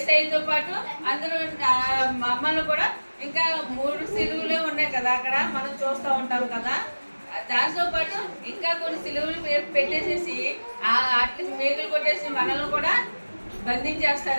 పాటు అందరూ మమ్మల్ని కూడా, ఇంకా 3 సిలువలే ఉన్నాయి కదా అక్కడ, మనం చూస్తూ ఉంటాం కదా. దాంతో పాటు ఇంకా కొన్ని సిలువలు పెట్టేసేసి అట్లీస్ట్ మేకులు కొట్టేసి మనల్ని కూడా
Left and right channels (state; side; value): inverted; both; correlation -1.00